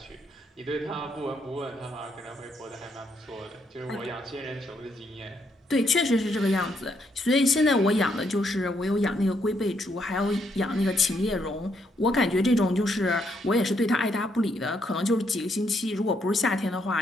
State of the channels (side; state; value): both; normal; correlation 0.75